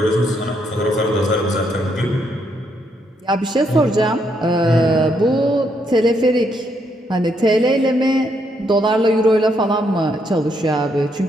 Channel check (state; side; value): normal; both; correlation 0.75